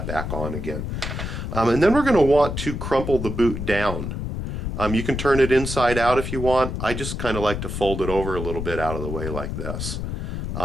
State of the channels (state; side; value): noise; left; rumble, 4 dB below the sound